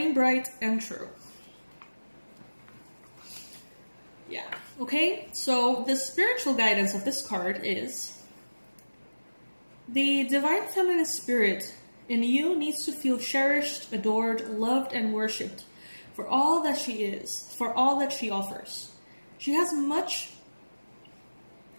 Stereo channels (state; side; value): inverted; both; correlation -1.00